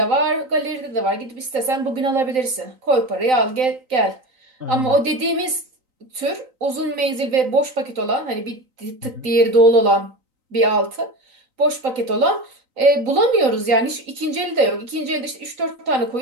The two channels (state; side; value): late; left; 3.9 ms